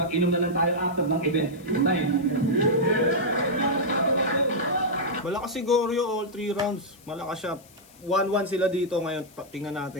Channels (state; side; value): noise; left; hiss, 26 dB below the sound